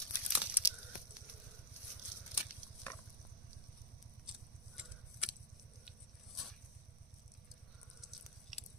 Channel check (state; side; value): normal; both; correlation -0.01